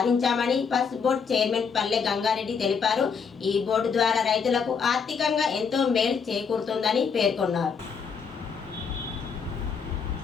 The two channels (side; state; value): right; quieter; 6.0 dB